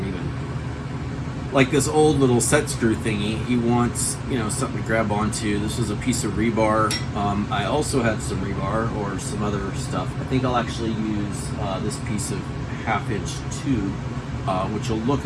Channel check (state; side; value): identical; both; correlation 1.00